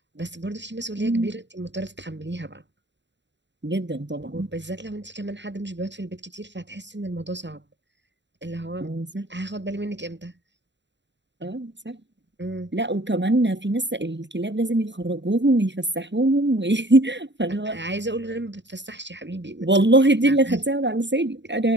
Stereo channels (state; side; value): late; left; 0.52 ms